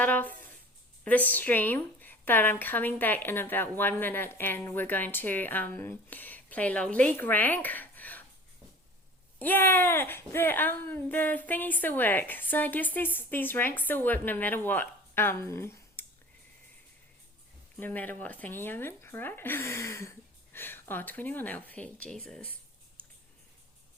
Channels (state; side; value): normal; both; correlation 0.42